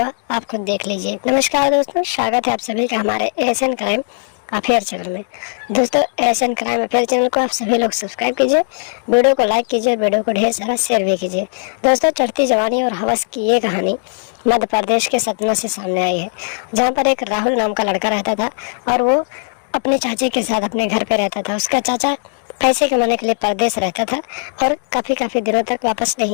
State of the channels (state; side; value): silent; right; digital silence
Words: आप खुद देख लीजिए। नमस्कार दोस्तों, स्वागत है आप सभी का हमारे एशियन क्राइम अफेयर चैनल में। दोस्तों एशियन क्राइम अफेयर चैनल को आप सभी लोग सब्सक्राइब कीजिए, वीडियो को लाइक कीजिए, वीडियो को ढेर सारा शेयर भी कीजिए। दोस्तों चढ़ती जवानी और हवस की ये कहानी मध्य प्रदेश के सतना से सामने आई है, जहाँ पर एक राहुल नाम का लड़का रहता था और वो अपने चाचे के साथ अपने घर पे रहता था। उसका चाचा पैसे कमाने के लिए परदेश रहता था और काफ़ी दिनों तक वापस